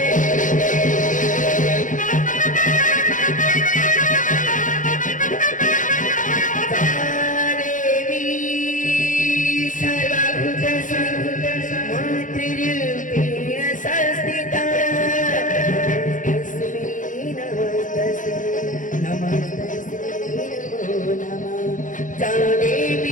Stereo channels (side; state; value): right; late; 0.38 ms